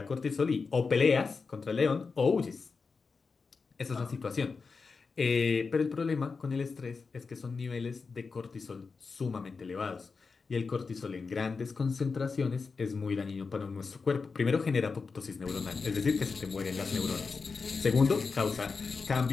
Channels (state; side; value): quieter; right; 4.7 dB